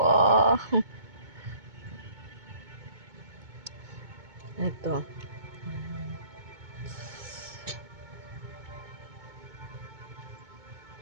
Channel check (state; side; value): late; left; 2.2 ms